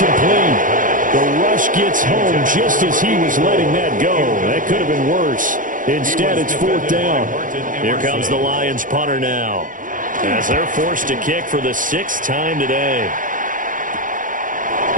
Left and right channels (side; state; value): left; late; 0.39 ms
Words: The rush gets home just as he was letting that go. That could have been worse. Instead, it's fourth down. Here comes the Lions punter now, as they're forced to kick for the 6th time today.